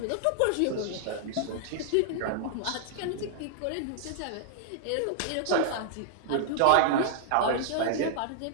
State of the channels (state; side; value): different; both; correlation 0.00